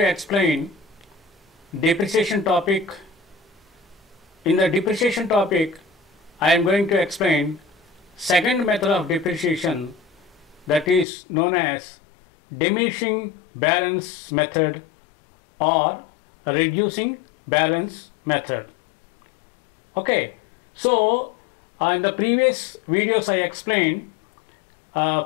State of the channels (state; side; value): drops out; right; at 11.1 s